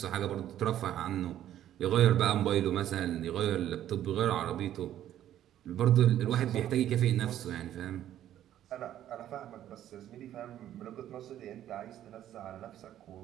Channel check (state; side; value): quieter; left; 11.8 dB